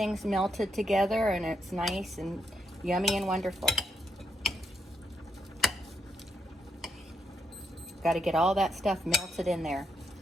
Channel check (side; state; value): both; normal; correlation 0.80